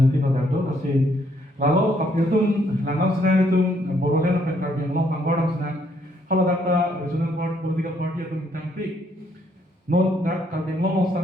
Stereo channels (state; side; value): normal; both; correlation 0.70